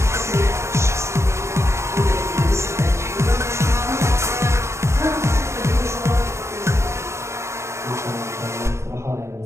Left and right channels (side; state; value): left; late; 0.13 ms